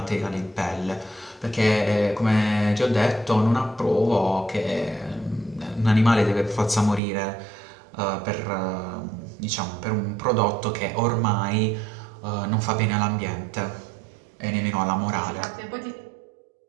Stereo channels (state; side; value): drops out; left; at 7.0 s